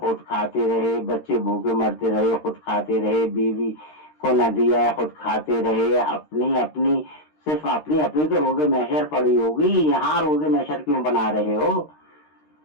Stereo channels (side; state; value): right; late; 13 ms